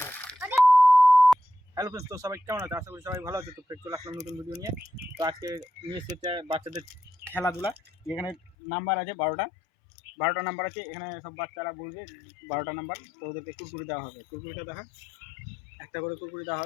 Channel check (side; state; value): right; drops out; at 8.6 s